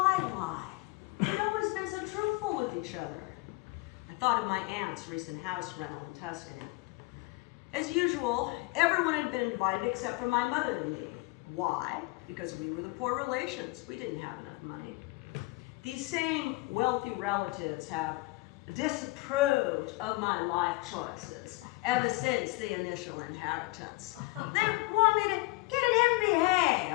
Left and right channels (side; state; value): right; quieter; 22.7 dB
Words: lie? We've always been so truthful with each other. I thought of my aunt's recent house rental in Tuscany. As usual, everyone had been invited except for my mother and me. Why? Because we were the poor relations. We didn't have enough money. These same wealthy relatives have disapproved of my life choices ever since the initial inheritance. They want me to get an MBA